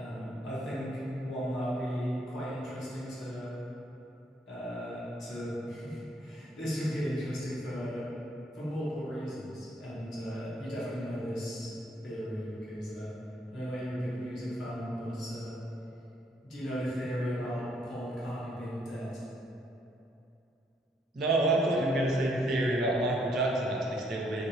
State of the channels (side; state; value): both; normal; correlation 0.70